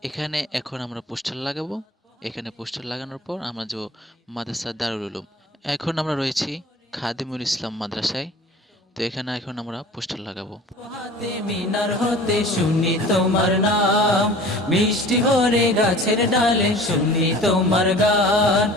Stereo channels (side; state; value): both; normal; correlation 0.43